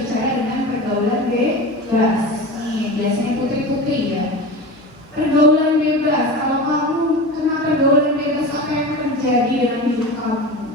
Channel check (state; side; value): noise; right; hum, 29 dB below the sound